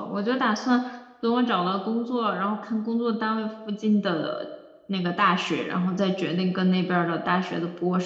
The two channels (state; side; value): identical; both; correlation 1.00